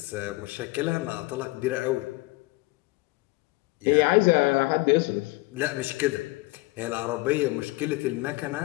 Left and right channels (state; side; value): quieter; right; 21.9 dB